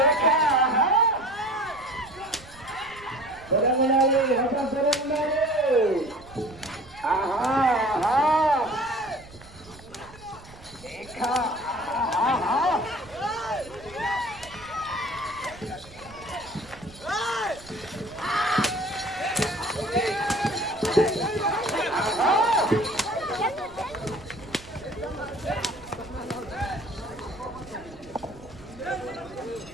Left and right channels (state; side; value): noise; right; rumble, 21 dB below the sound